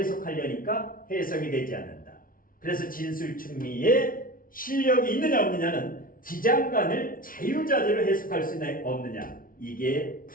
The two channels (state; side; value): late; right; 0.41 ms